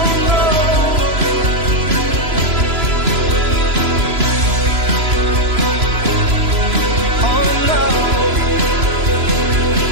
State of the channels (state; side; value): late; left; 3.0 ms